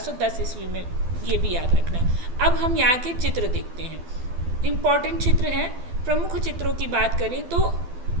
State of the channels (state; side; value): late; left; 12 ms